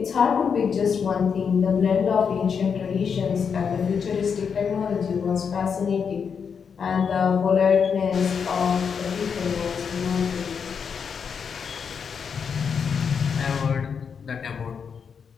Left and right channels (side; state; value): right; quieter; 6.5 dB